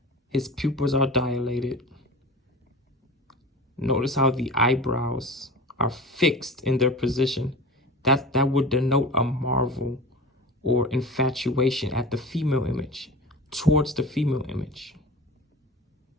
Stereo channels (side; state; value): both; normal; correlation 0.34